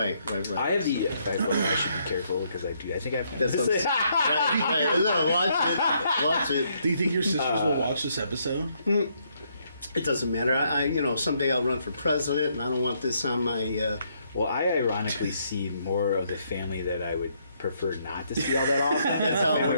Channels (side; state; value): both; inverted; correlation -0.72